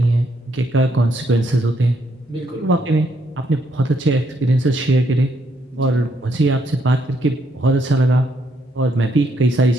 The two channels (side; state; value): both; normal; correlation 0.73